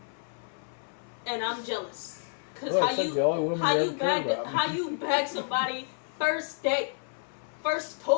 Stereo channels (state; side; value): silent; right; 56 dB below the other